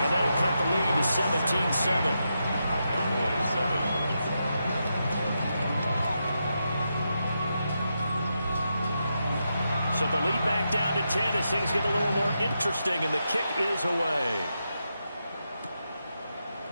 And that'll cut the lead to 17-7. So the lead back down to 10 as things get a little more interesting, and the kick is away.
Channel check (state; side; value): inverted; both; correlation -0.85